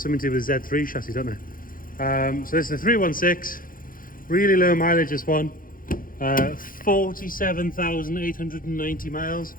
to do with Z3 chassis, don't they? So this is the 316. Really low mileage, this one. 47,890 miles.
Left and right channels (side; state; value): right; late; 0.41 ms